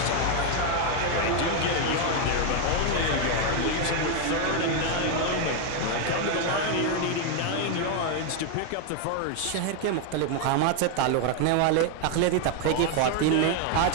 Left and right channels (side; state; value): both; different; correlation 0.01